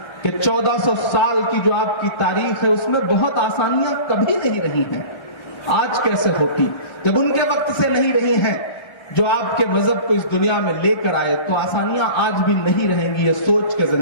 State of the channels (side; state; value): right; late; 1.3 ms